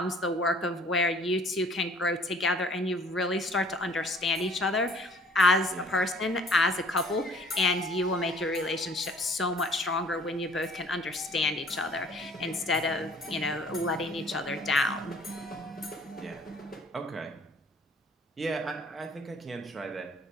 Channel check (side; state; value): both; normal; correlation 0.54